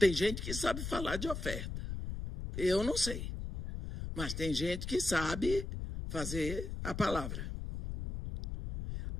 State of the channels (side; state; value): left; noise; rumble, 6 dB below the sound